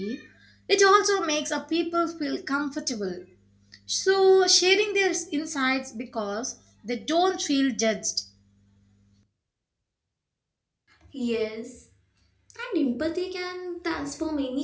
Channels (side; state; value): both; identical; correlation 1.00